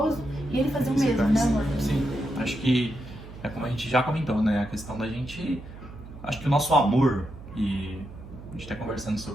e ele fazia o mesmo, né, amor? Sim, acho que é como a gente já comentou, né, a questão da gente... Acho que o nosso amor, e a gente tá conversando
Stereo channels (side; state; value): right; noise; hum, 15 dB below the sound